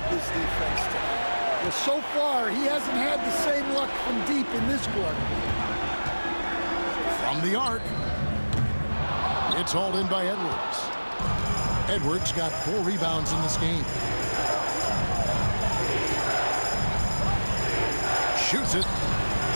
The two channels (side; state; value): both; inverted; correlation -1.00